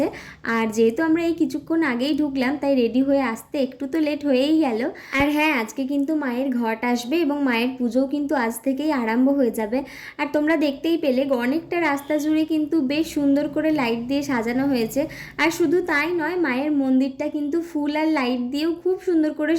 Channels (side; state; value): both; identical; correlation 1.00